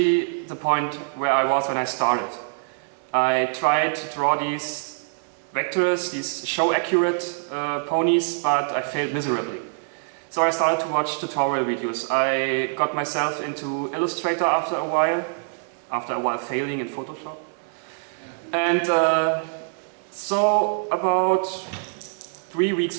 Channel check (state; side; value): silent; left; 62 dB below the other